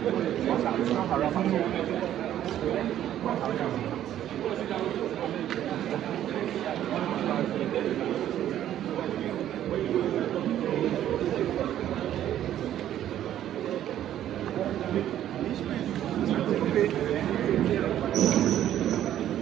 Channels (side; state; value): left; quieter; 11.6 dB